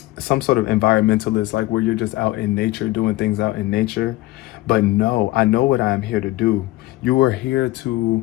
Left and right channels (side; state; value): right; quieter; 18.0 dB